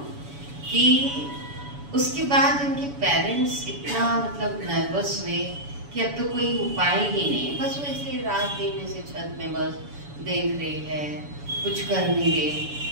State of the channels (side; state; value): left; late; 7.0 ms